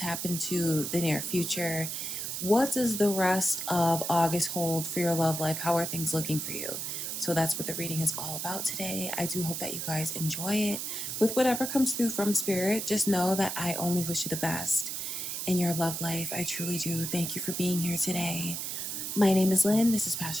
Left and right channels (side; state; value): right; noise; hiss, 4 dB below the sound